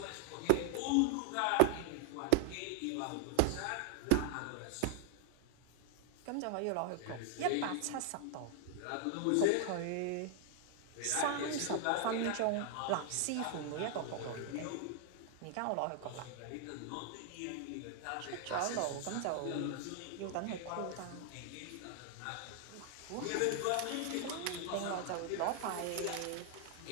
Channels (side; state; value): both; different; correlation 0.00